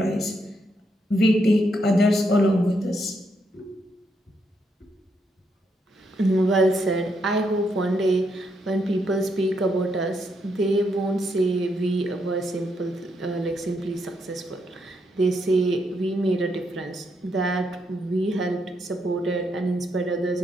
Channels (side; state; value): both; normal; correlation 0.78